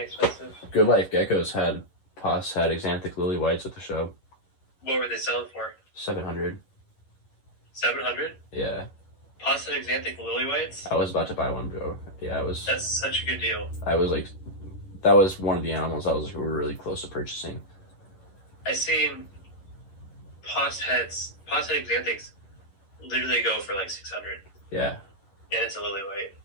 Good Life Geckos had Xanthic Lily Whites at the show. What were they selling for? 700. 700? Yeah. Pasta Xanthic Lily Whites? I was about to buy one, bro. Yeah, I was. That's such a good deal. I was like, that was one of the animals I was like, we were really close to purchasing. I seen Pasta Xanthics literally go for like 600. Yeah. And it's a lily white.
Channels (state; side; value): late; right; 11 ms